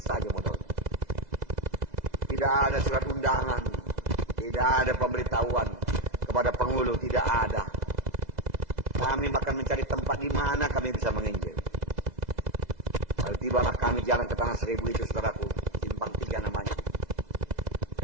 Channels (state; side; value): late; left; 2.0 ms